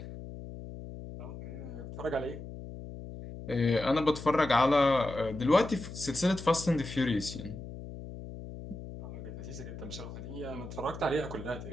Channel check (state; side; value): noise; left; hum, 11 dB below the sound